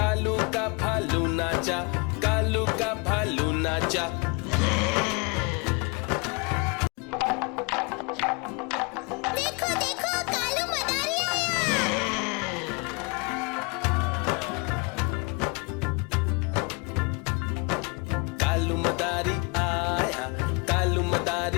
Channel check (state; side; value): quieter; right; 30.9 dB